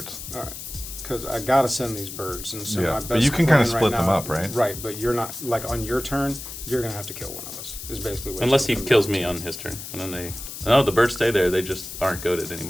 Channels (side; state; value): left; noise; hiss, 10 dB below the sound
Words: All right. Because I gotta send these birds, and so Yeah, my best but you can kinda plan split right them now- up, right? Right, but you're not like on your turn. You're gonna have to kill one of us. Is basically what unless he it's gonna kills be. me on his turn, and then the birds stay there. They just aren't goaded